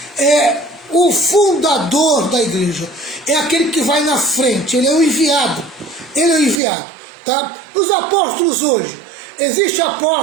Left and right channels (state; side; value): drops out; left; at 6.6 s